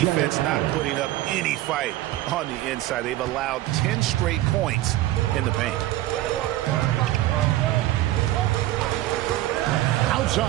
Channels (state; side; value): quieter; left; 15.5 dB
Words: defense not putting up any fight on the inside. They've allowed 10 straight points in the paint.